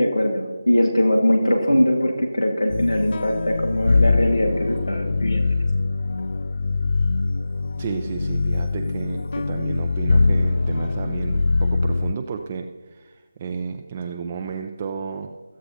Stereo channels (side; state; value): both; inverted; correlation -0.95